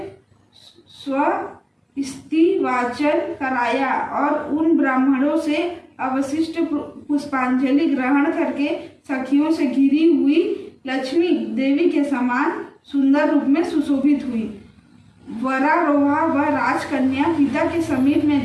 स्वस्तिवाचन कराया और उन ब्राह्मणों से अवशिष्ट पुष्पांजलि ग्रहण करके सखियों से घिरी हुई लक्ष्मी देवी के समान सुंदर रूप में सुशोभित हुई। वरारोहा व राजकन्या पिता के समीप में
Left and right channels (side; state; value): both; identical; correlation 1.00